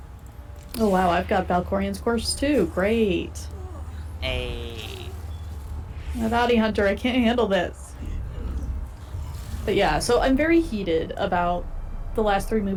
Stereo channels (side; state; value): both; identical; correlation 1.00